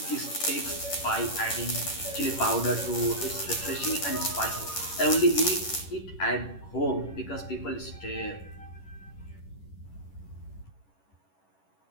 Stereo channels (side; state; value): right; late; 11 ms